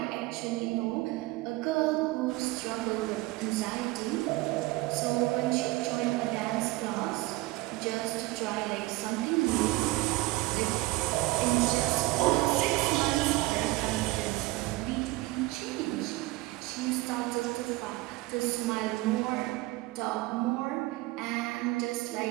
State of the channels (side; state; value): left; quieter; 20.5 dB